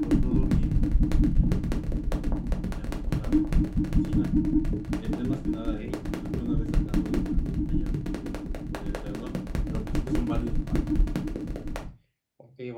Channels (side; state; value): both; identical; correlation 1.00